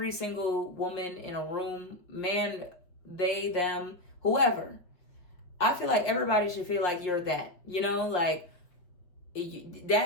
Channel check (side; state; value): right; late; 5.6 ms